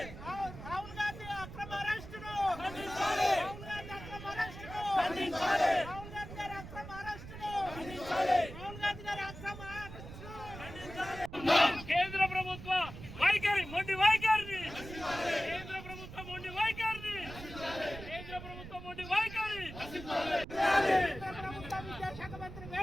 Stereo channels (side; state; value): right; noise; rumble, 12 dB below the sound